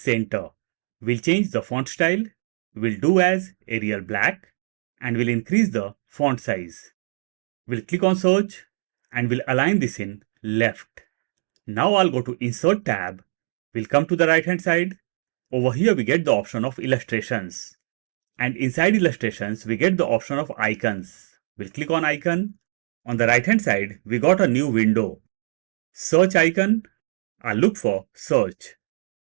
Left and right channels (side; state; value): left; silent; digital silence